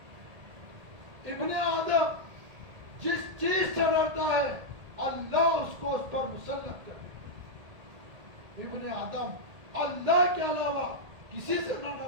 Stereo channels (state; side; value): late; left; 1.8 ms